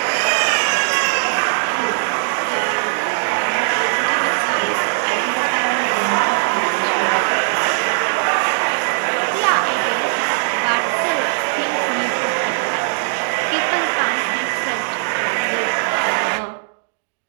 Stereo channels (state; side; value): silent; left; digital silence